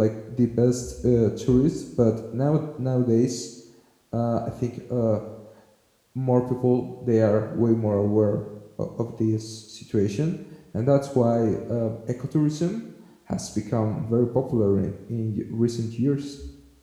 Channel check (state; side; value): identical; both; correlation 1.00